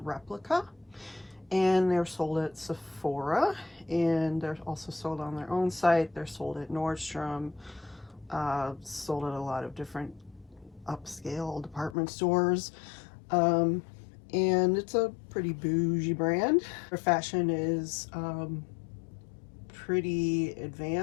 and they're sold at Sephora, and they're also sold on their own site. They're sold at Nordstrom, sold at a lot of different upscale department stores. And it's a pretty bougie brand. Their fashion is pretty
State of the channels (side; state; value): right; drops out; at 12.0 s